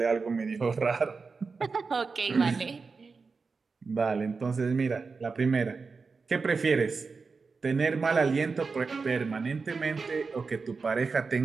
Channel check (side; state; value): left; quieter; 4.6 dB